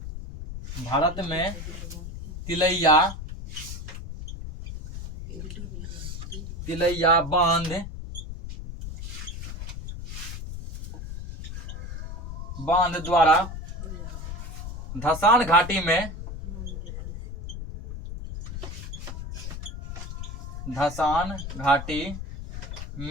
भारत में तिलैया बांध द्वारा धसान घाटी में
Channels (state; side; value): noise; left; rumble, 8 dB below the sound